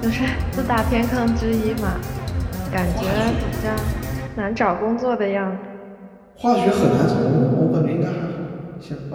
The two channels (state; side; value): identical; both; correlation 1.00